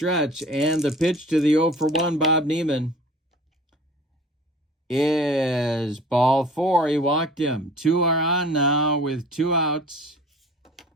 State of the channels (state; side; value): normal; both; correlation 0.45